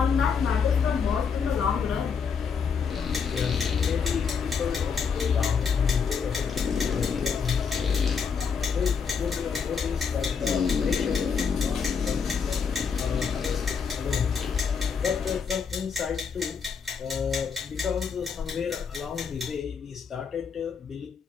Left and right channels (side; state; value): right; quieter; 6.2 dB